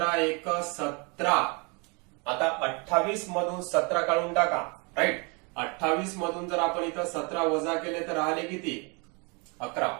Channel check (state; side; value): quieter; left; 31.6 dB